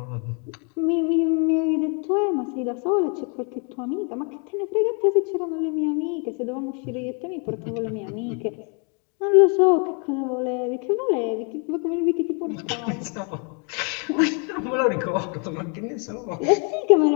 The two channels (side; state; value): right; quieter; 35.3 dB